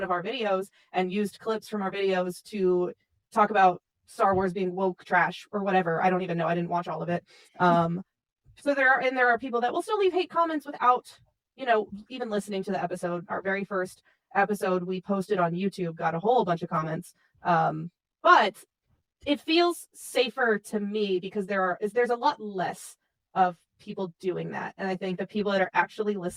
of our videos and used clips from our videos to talk about Star Wars being woke trash or whatever. I don't even know. I didn't watch all of it. So there are people that will still leave hate comments without, even listening to the episode. Our very first episode we posted on YouTube got a whole bunch of comments. But it feels safer to me because there's a lot less of people doing that. And I think the people that are actually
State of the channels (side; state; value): both; identical; correlation 1.00